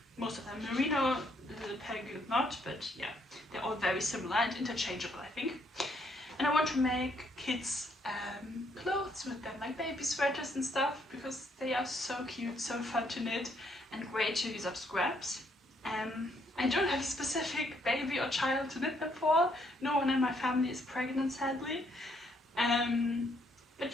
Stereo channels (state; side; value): normal; both; correlation 0.71